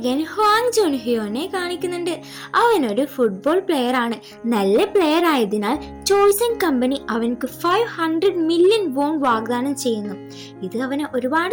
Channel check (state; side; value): identical; both; correlation 1.00